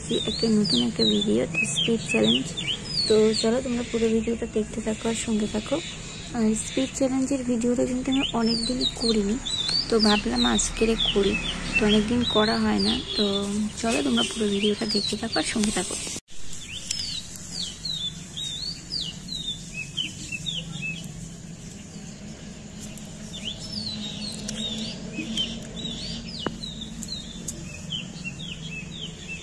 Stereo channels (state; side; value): identical; both; correlation 1.00